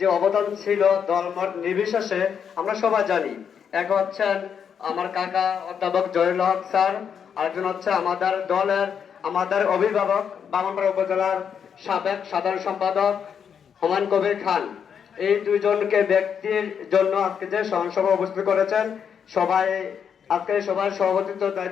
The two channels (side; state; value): right; quieter; 7.5 dB